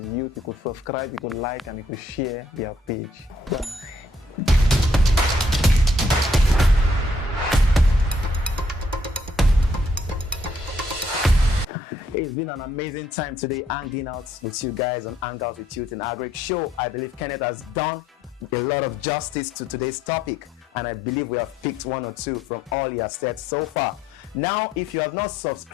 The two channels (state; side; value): normal; both; correlation 0.68